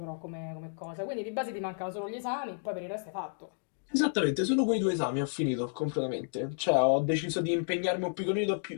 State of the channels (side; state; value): right; silent; digital silence